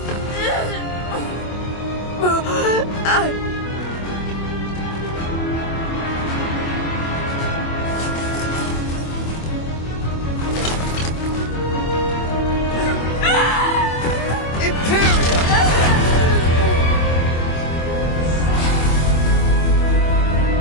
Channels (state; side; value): late; right; 25 ms